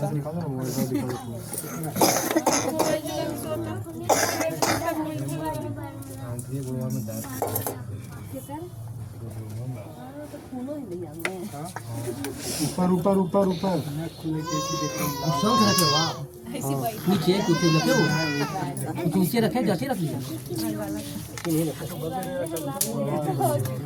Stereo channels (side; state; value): both; identical; correlation 1.00